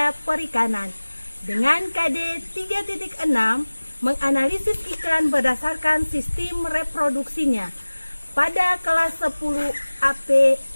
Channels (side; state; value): both; inverted; correlation -1.00